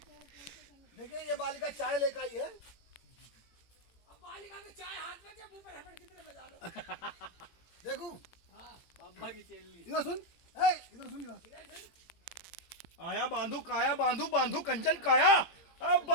देखिए। ये बालिका चाय लेकर आई है। अब बालिका में चाय हाथ में मुंह पे रबड़ की तरह बजा लो। देखूं बाबा की चेली। इधर सुन, ए इधर सुन इधर। आया बांधू काया बांधू बांधू कंचन काया। अब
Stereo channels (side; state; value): right; late; 18 ms